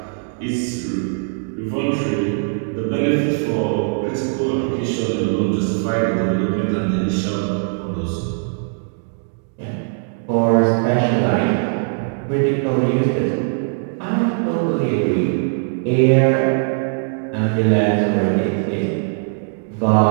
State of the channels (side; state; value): left; silent; 66 dB below the other